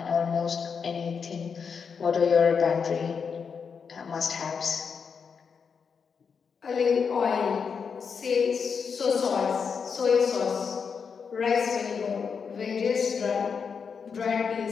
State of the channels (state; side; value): quieter; right; 6.1 dB